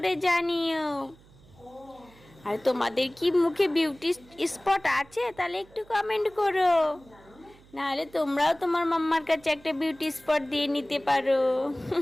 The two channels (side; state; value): right; noise; hum, 26 dB below the sound